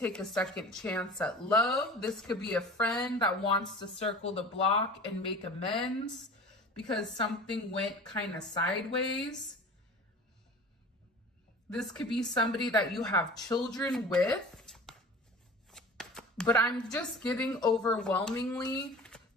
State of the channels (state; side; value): normal; both; correlation 0.39